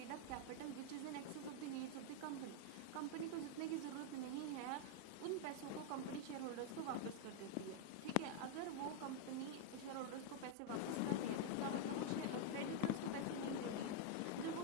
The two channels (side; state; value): both; different; correlation 0.00